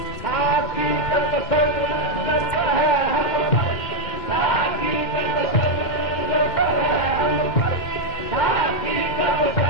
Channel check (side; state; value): right; late; 2.1 ms